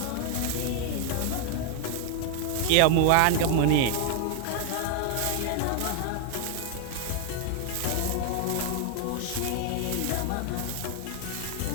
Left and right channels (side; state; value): both; different; correlation 0.00